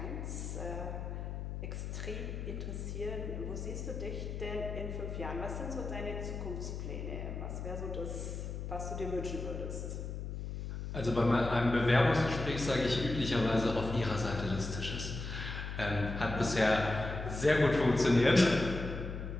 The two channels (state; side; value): noise; left; hum, 6 dB below the sound